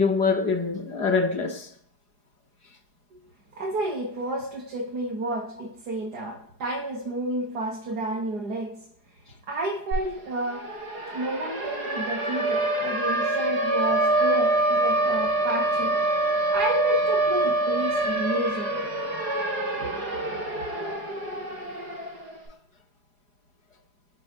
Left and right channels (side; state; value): left; late; 4.8 ms